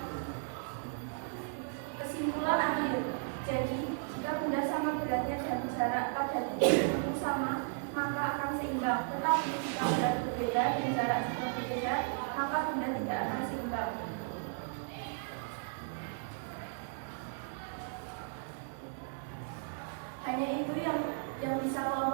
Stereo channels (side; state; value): left; silent; 54 dB below the other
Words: Kesimpulan akhir, jadi jika benda sama beratnya dan jarak pada titik tertentu sama, maka akan seimbang. Tetapi jika berat berbeda dan jarak juga berbeda, maka benda tidak akan seimbang. Hanya itu yang bisa